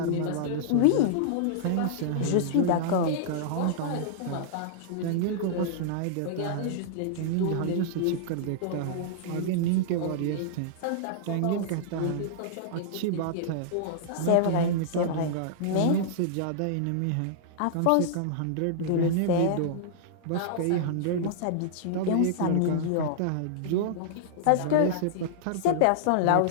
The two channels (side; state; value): both; different; correlation -0.02